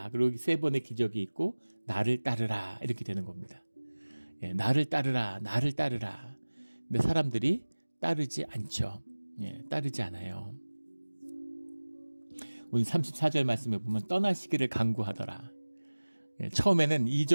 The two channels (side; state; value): both; inverted; correlation -1.00